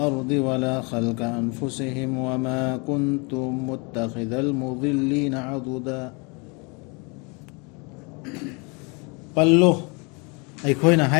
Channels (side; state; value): right; quieter; 31.1 dB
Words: ولا خلق أنفسهم وما كنتم متخذ المضلين عضدا قالوا أي كوينا